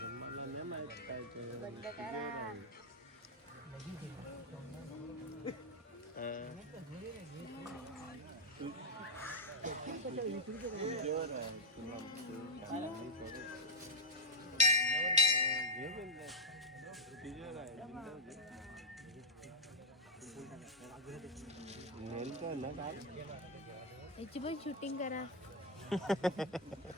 बंद करा याची पण शूटिंग करा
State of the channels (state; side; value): normal; both; correlation -0.01